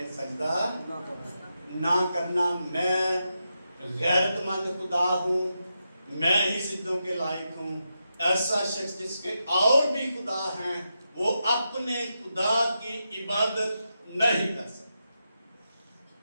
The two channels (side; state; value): both; inverted; correlation -0.86